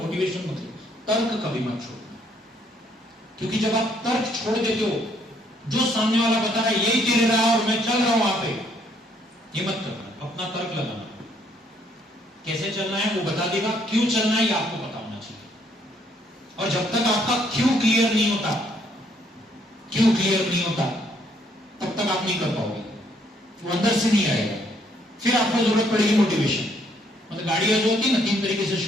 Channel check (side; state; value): both; normal; correlation 0.68